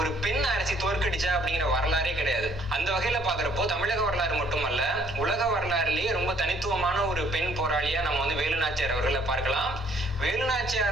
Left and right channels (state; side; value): noise; right; hum, 25 dB below the sound